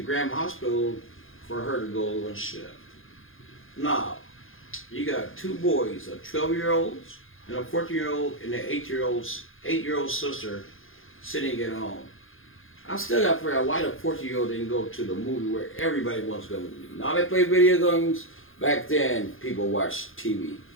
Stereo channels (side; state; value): right; late; 0.59 ms